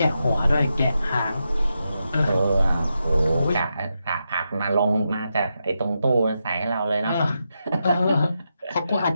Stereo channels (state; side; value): inverted; both; correlation -0.86